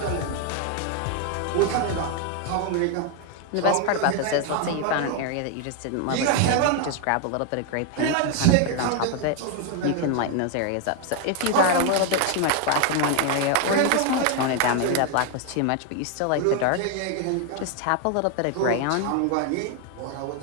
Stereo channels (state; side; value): different; both; correlation 0.01